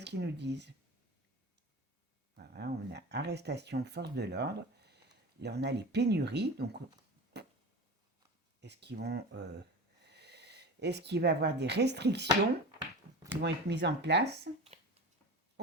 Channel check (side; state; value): both; normal; correlation 0.31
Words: qu'ils nous disent? Voilà, on a arrestation, force de l'ordre. Là, on a les pénuries. Donc, est-ce qu'il va y avoir des restrictions qui vont être mises en place?